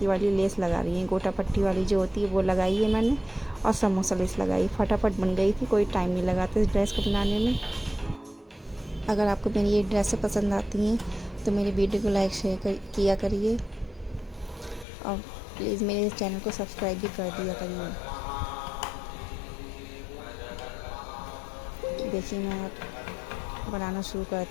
वाली लेस लगा रही है। गोटा पट्टी वाली जो होती है वो लगाई है मैंने, और समोसा लेस लगाई। फटाफट बन गई थी, कोई टाइम नहीं लगा था इस ड्रेस को बनाने में। अगर आपको मेरी ये ड्रेसें पसंद आती हैं तो मेरी वीडियो को लाइक शेयर किया करिए, और प्लीज़ मेरे चैनल को सब्सक्राइब भी कर दिया करिए। देखिए, मैं बनाना शुरू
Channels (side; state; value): right; drops out; at 14.9 s